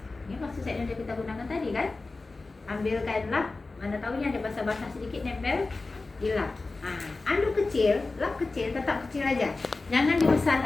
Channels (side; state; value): right; quieter; 3.5 dB